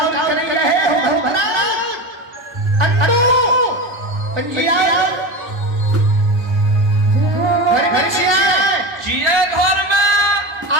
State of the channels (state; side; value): late; left; 1.3 ms